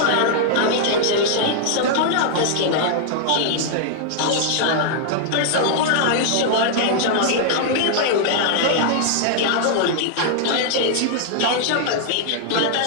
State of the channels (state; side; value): different; both; correlation -0.01